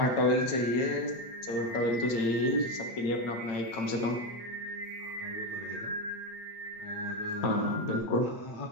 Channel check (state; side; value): late; right; 8.9 ms